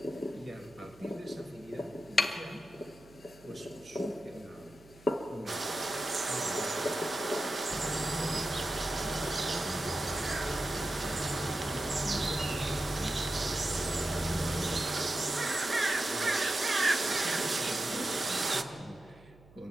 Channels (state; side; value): noise; right; hum, 24 dB below the sound